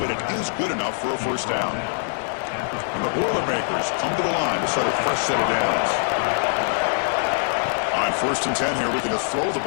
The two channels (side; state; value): right; silent; digital silence